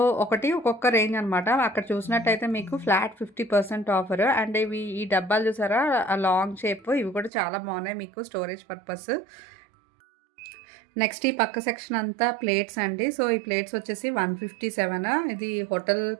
ఒక్కొక్క రేంజ్ అనమాట. అక్కడ చూసినట్టయితే మీకు ఫ్లాట్ 50% ఆఫర్. అండ్ ఇవి ఈ డబ్బాలు చూసారా లాంగ్ షేప్, ఇవి కూడా చాలా బాగున్నాయి మీకు స్టోరేజ్ పర్పస్. నెక్స్ట్ ఈ పక్క సెక్షన్ అంతా ప్లేట్స్ అండి. సో ఈ ప్లేట్స్ వచ్చేసి 157. ఇది హోటల్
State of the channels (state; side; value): drops out; left; at 7.3 s